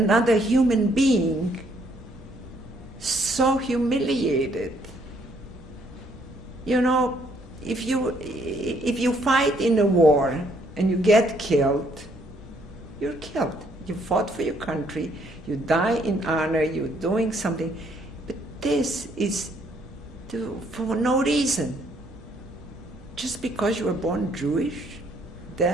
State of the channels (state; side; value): normal; both; correlation 0.67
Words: human being so humiliated? You know, if you fight in a war and you get killed, you're killed. You fought for your country, you die in honor, you're doing something. But this is for no reason. Just because you were born Jewish,